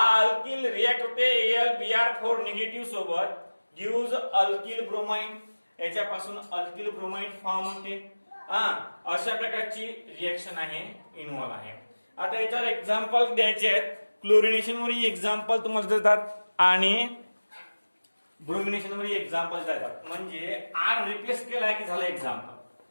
अल्किल रिएक्ट होते AlBr4 निगेटिव्ह सोबत गिव्स अल्किल ब्रोमाइड. याच्यापासून अल्किल ब्रोमाइड फॉर्म होते. अशा प्रकारची रिएक्शन आहे इन्व्हॉल्व आहे. आता याच्यावर एक्झाम्पल द्यायचे आहेत. क्लोरिनेशन वर एक्झाम्पल तुम्हाला देतात आणि ब्रोमिनेशन वर एक्झाम्पल देतात. म्हणजे आर रिप्लेस केला की झालं एक्झाम्पल.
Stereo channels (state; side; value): inverted; both; correlation -1.00